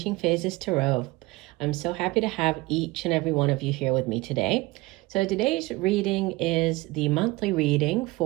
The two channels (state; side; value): quieter; left; 21.4 dB